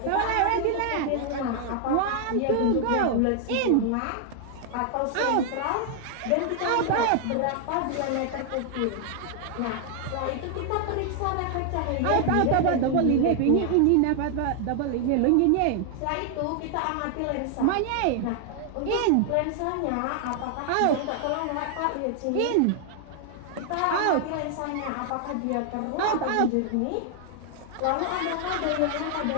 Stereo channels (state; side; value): different; both; correlation 0.00